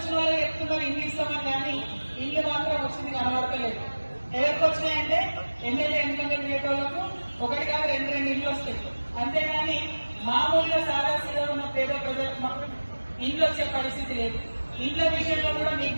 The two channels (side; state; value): both; inverted; correlation -1.00